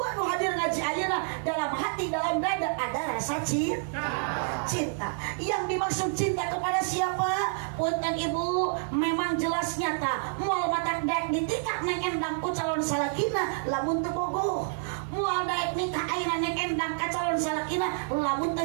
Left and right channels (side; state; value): left; silent; 59 dB below the other